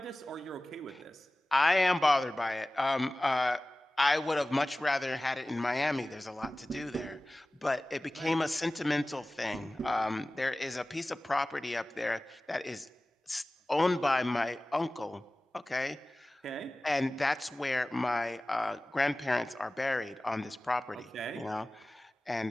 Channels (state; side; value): normal; both; correlation 0.97